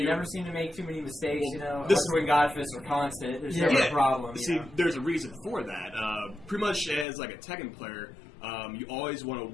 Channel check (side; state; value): right; drops out; at 7.1 s